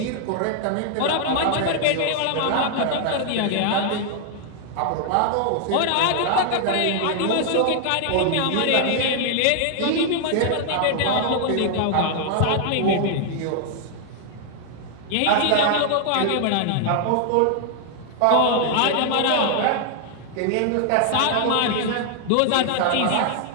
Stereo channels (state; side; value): different; both; correlation 0.00